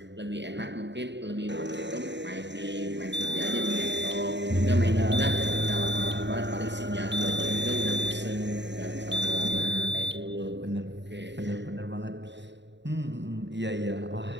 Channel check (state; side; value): late; left; 0.52 ms